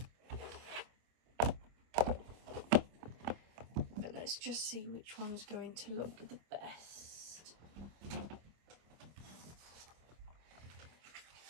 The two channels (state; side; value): late; left; 25 ms